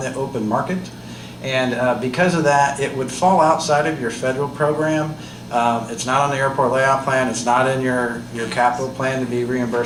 open market. And because of that, it would fall outside of your federal program. It's not on the airport layout plan. It's not in your capital plan to be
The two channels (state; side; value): identical; both; correlation 1.00